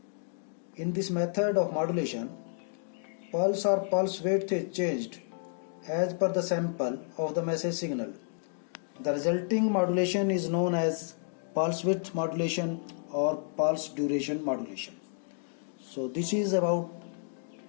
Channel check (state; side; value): silent; right; digital silence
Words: In this method of modulation, pulse or pulse width is changed as per the sample of the message signal. The resulting modulation is known as pulse width modulation or pulse duration modulation. So this is about